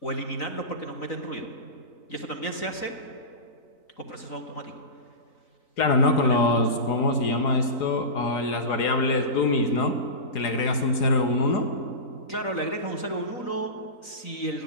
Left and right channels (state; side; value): late; right; 3.9 ms